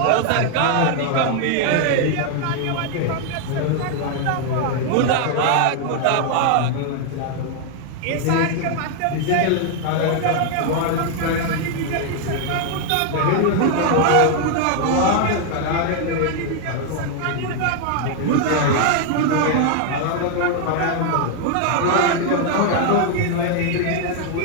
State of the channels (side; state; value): both; different; correlation 0.00